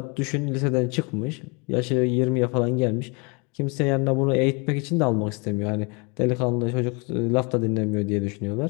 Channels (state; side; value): quieter; right; 31.6 dB